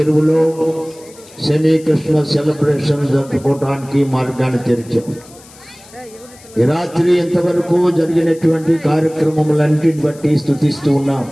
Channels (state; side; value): noise; left; hiss, 23 dB below the sound